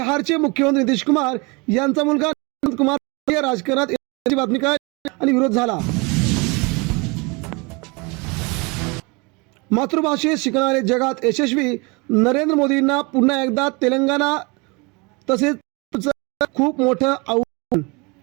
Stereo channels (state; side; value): quieter; left; 28.3 dB